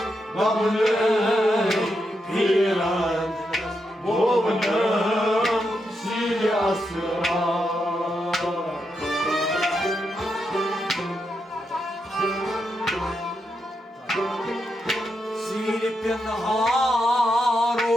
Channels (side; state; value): both; normal; correlation 0.84